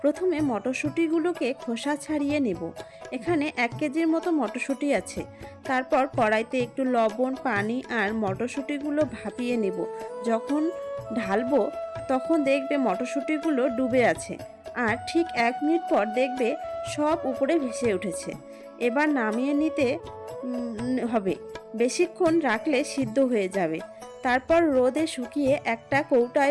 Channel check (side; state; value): both; identical; correlation 1.00